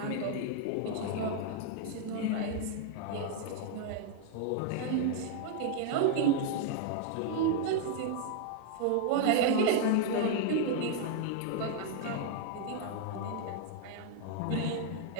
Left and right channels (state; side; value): different; both; correlation 0.00